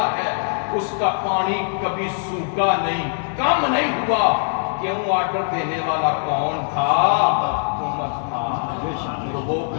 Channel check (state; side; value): silent; right; digital silence